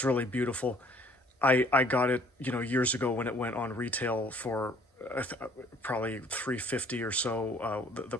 really beautiful. I got it, years ago when it went on retail for probably $350 or so, the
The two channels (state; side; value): normal; both; correlation 0.58